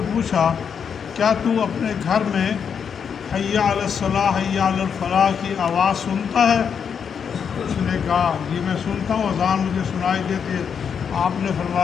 پوچھا کیا تو اپنے گھر میں حی علی الصلاح حی علی الفلاح کی آواز سنتا ہے؟ اس نے کہا یہ میں سنتا ہوں، اذان مجھے سنائی دیتی ہے۔ آپ نے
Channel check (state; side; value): quieter; right; 7.1 dB